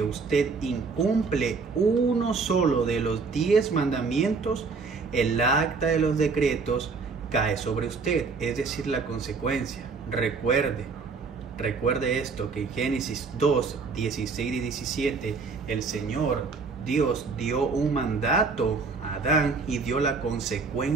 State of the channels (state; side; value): quieter; left; 4.6 dB